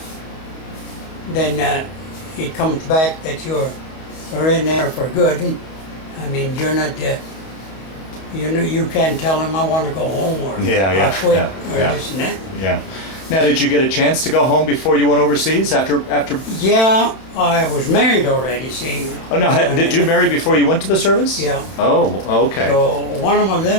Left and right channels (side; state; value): right; late; 31 ms